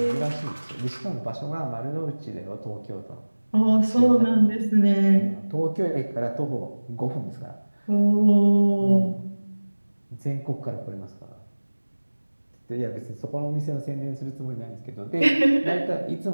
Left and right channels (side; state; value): both; inverted; correlation -1.00